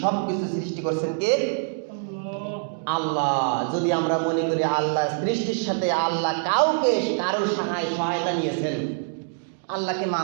সব কিছু সৃষ্টি করছেন কে? আল্লাহ। যদি আমরা মনে করি আল্লাহ সৃষ্টির সাথে আল্লাহ কারোর সহায়তা নিয়েছেন, আল্লাহকে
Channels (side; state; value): left; silent; digital silence